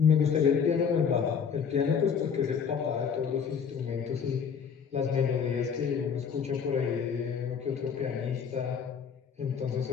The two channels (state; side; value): quieter; right; 6.8 dB